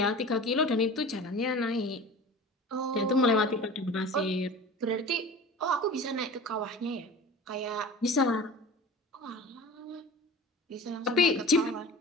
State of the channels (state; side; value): normal; both; correlation 0.38